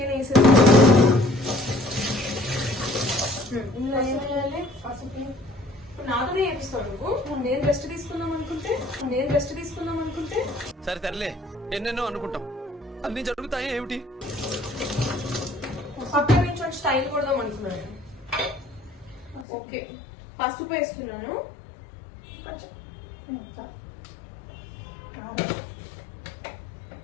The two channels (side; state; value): right; drops out; at 19.5 s